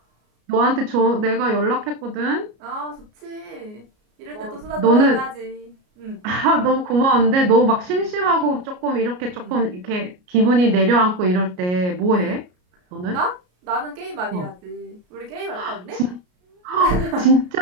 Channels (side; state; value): left; late; 33 ms